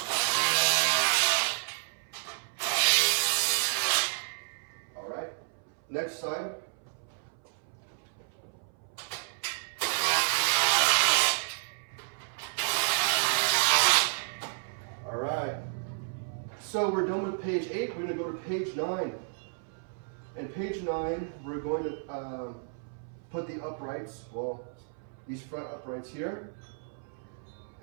All right, next side. So we're done with page 8, we're going to go to page 9. And page 9, we're going to put the uprights, well, these front uprights here.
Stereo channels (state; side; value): silent; left; 57 dB below the other